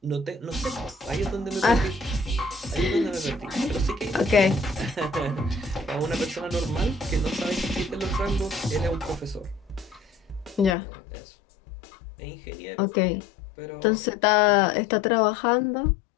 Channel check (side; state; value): right; drops out; at 10.8 s